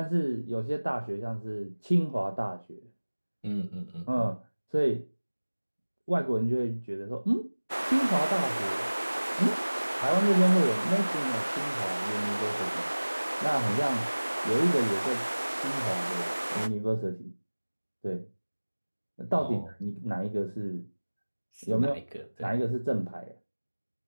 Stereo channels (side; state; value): both; inverted; correlation -1.00